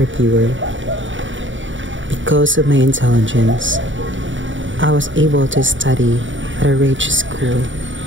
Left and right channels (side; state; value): left; late; 0.56 ms